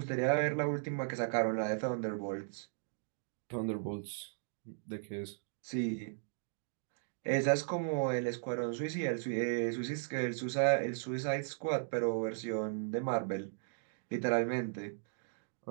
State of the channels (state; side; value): silent; left; digital silence